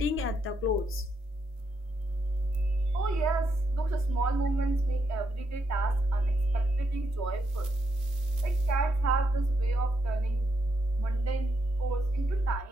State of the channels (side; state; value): both; normal; correlation 0.79